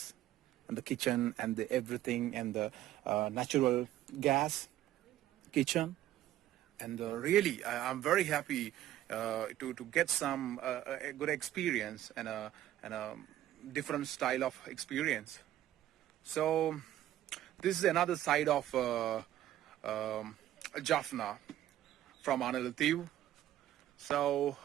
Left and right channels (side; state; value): left; quieter; 13.1 dB